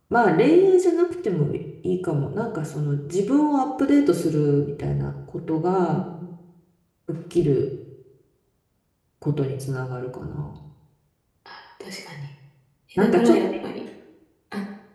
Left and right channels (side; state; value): both; identical; correlation 1.00